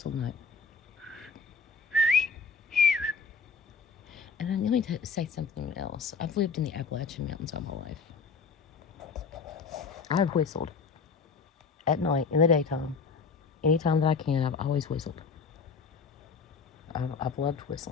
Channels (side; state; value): right; quieter; 5.1 dB